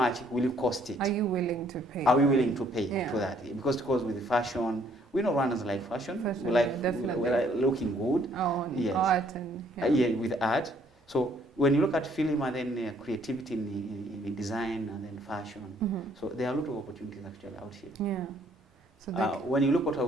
will it cost it? Are you willing to pay? Are we willing to pay for that? Because with fashion, we know Rwandans like fashion. We like looking good. Art and with art. So when you look at film and then creativity in design and then fashion, so there are a lot of opportunities actually out here. So when you look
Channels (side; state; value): both; normal; correlation 0.64